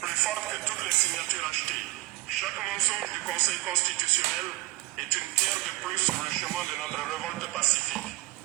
plus forte que toutes les signatures achetées. Chaque mensonge du Conseil constitutionnel est une pierre de plus sur le chemin de notre révolte pacifique.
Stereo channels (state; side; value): quieter; left; 20.0 dB